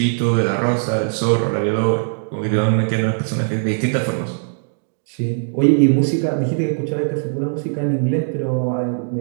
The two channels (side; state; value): left; silent; digital silence